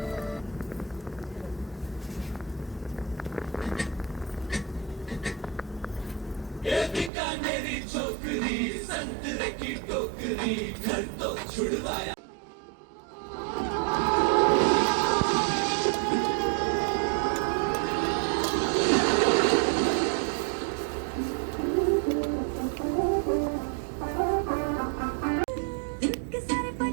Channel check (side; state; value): left; drops out; at 7.1 s